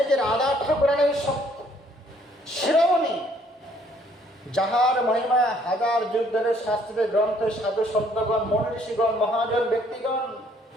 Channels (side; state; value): both; normal; correlation 0.63